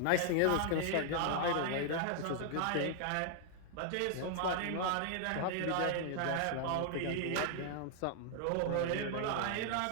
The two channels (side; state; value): both; different; correlation 0.00